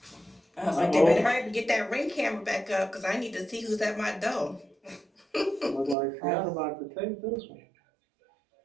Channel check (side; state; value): left; drops out; at 6.0 s